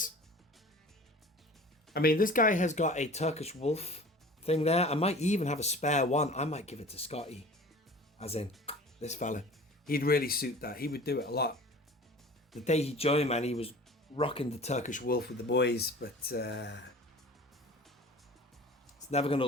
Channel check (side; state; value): both; normal; correlation 0.42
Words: I mean, this guy has got a Turkish wolf thing there. I might even have a spare one. I might give it to Scotty. As in, this fella. He'd really suit that. He would do it a lot. The day he joined, man, he was rocking the Turkish wolf with the boys, but it's never going to